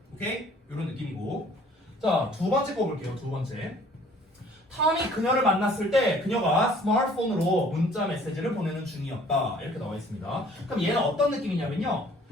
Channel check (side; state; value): both; normal; correlation 0.55